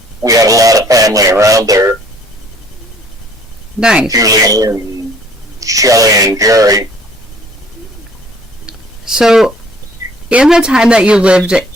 we had a lot of family around there. Nice. Julie and Shelley and Jerry. So, in the time that you lived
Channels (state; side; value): normal; both; correlation 0.57